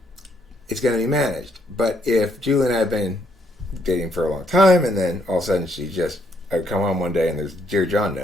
it's going to be managed. But if Julie and I have been dating for a long time, and then all of a sudden I come home one day and there's a Dear John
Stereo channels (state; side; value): normal; both; correlation 0.72